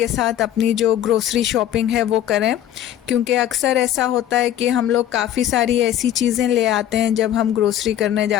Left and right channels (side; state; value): right; quieter; 11.3 dB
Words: साथ अपनी जो ग्रोसरी शॉपिंग है वो करें। क्योंकि अक्सर ऐसा होता है कि हम लोग काफ़ी सारी ऐसी चीज़ें ले आते हैं जब हम ग्रोसरी करने